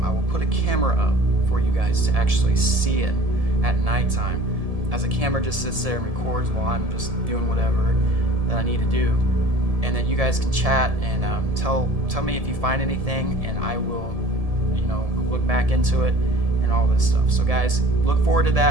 I will put a camera up for you guys to actually see it at nighttime, as a camera just sits there and records while I'm just doing whatever that I need to do. And then you guys can chat and tell me if you find anything, and I will, look back into it and all this stuff. So guys, look forward to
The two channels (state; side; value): late; left; 1.7 ms